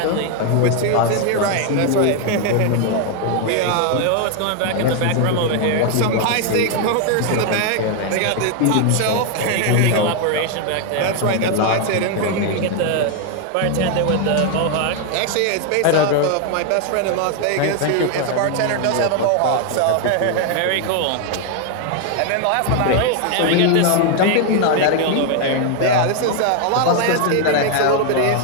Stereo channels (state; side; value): different; both; correlation 0.01